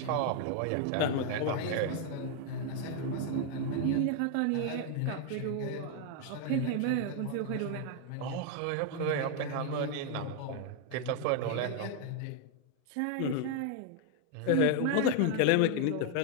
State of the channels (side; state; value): both; different; correlation 0.00